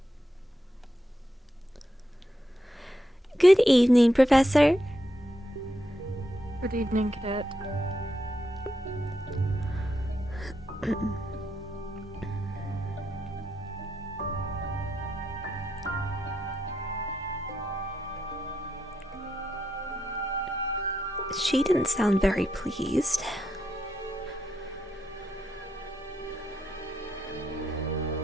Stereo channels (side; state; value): both; normal; correlation 0.82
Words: Good evening, Professor. Good evening, Cadet. She didn't sound very pleased.